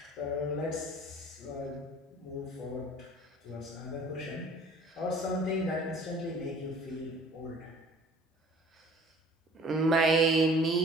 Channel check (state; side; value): normal; both; correlation 0.50